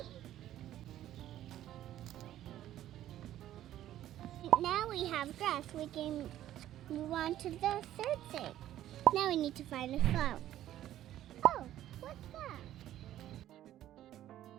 Now we have grass. We can move on to the third thing. Now we need to find a flower. Oh, what's that?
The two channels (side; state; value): left; quieter; 12.7 dB